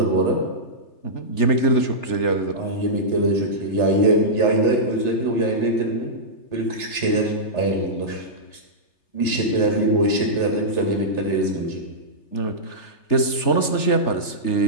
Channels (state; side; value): late; right; 3.3 ms